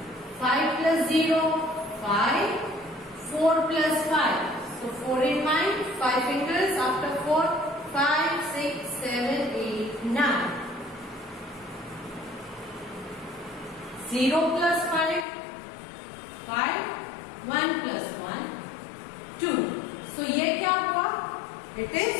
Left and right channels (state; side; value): drops out; right; at 15.2 s